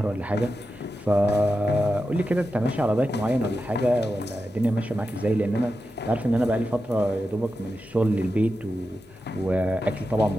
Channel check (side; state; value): both; normal; correlation 0.90